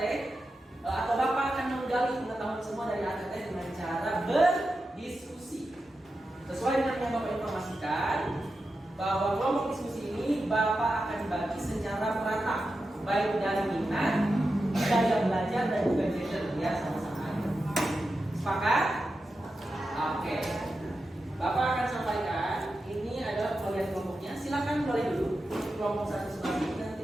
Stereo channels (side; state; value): both; normal; correlation 0.90